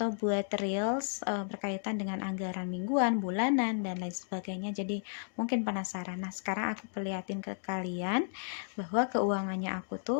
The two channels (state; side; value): silent; right; digital silence